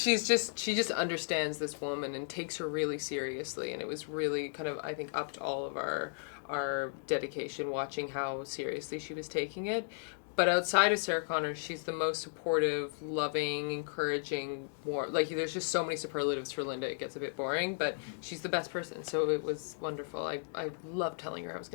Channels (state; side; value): silent; right; digital silence